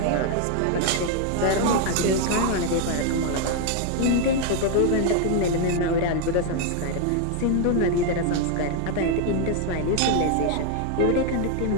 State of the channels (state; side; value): different; both; correlation 0.00